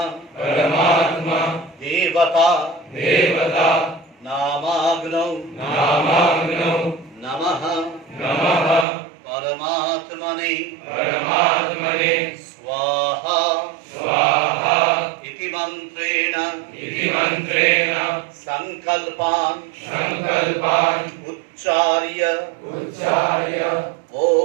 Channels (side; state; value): left; drops out; at 8.8 s